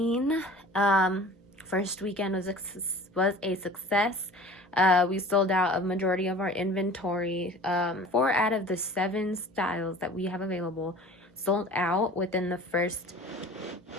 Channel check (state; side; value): normal; both; correlation 0.43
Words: First weekend was a success. We sold out a majority of our inventory. 4 out of the 7 styles that we have available sold out within the first